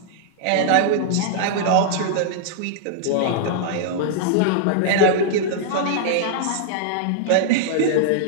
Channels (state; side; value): different; both; correlation -0.01